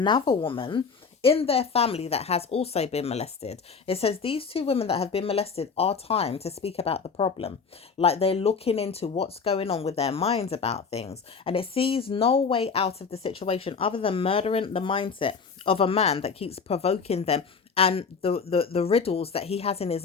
woman in their family that has also been molested. It says these two women that have been molested are time to speak about the problem. Like, they're looking into what's going on with their minds about things. And it sees no way out of the situation other than murdering the mindset of a man that keeps provoking them and the riddles that he has in his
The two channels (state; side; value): quieter; right; 5.5 dB